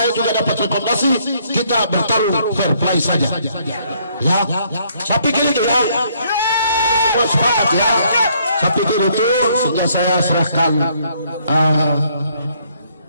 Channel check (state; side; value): inverted; both; correlation -0.67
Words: juga dapat rekomendasi, kita bertarung fair play saja. Ya, saya pikir itu ya. Sepakat ya. Saya pikir itu, sehingga saya serahkan